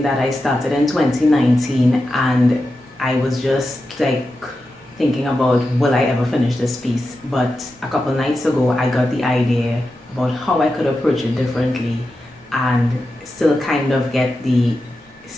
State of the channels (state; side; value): normal; both; correlation 0.90